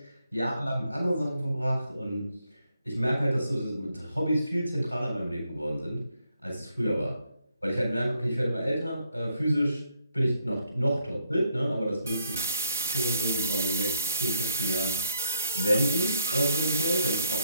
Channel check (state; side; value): inverted; both; correlation -0.74